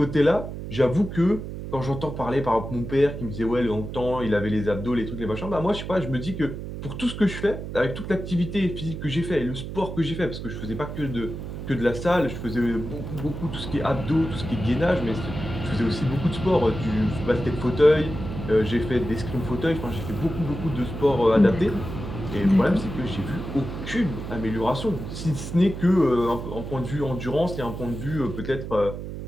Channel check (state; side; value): noise; right; hum, 8 dB below the sound